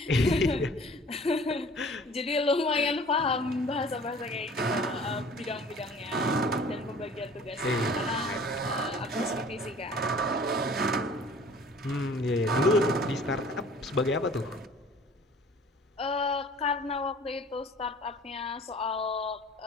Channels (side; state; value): both; normal; correlation 0.49